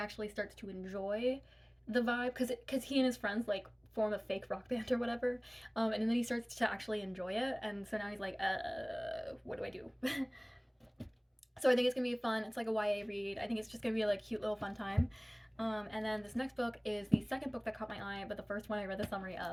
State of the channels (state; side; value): identical; both; correlation 1.00